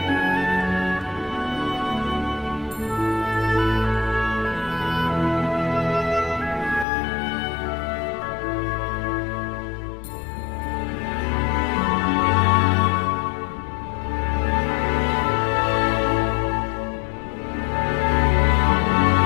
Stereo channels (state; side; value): drops out; right; at 6.9 s